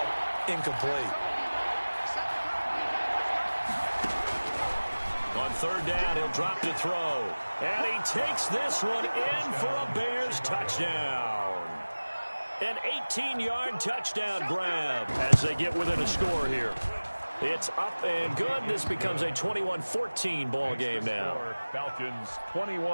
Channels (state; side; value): inverted; both; correlation -1.00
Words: incomplete. On third down, he'll drop to throw. And he takes this one in for a Bears touchdown. An 18-yard touchdown grab as they get within a score here. It's up and good. This becomes a 21-14 ball game now. Falcons